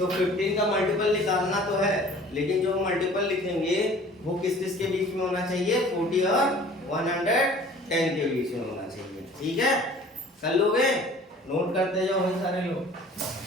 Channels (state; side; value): normal; both; correlation 0.48